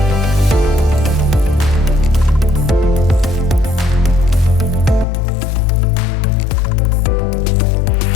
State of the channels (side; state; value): right; drops out; at 5.1 s